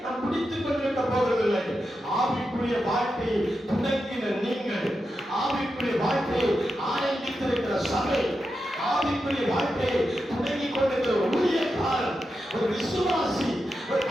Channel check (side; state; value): both; normal; correlation 0.88